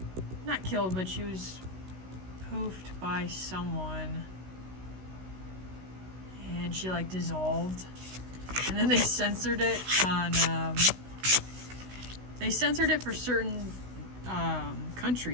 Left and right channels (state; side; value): late; left; 16 ms